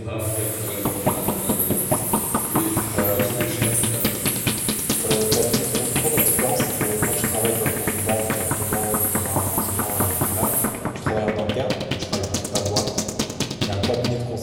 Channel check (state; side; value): identical; both; correlation 1.00